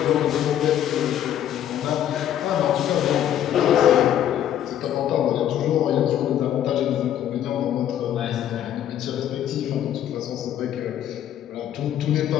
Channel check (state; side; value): quieter; right; 10.8 dB